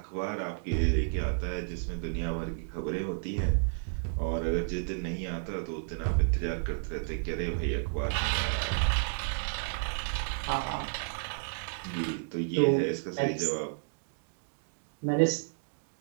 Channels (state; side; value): silent; left; digital silence